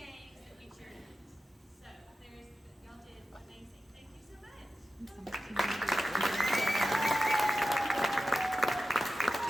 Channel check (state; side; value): normal; both; correlation 0.93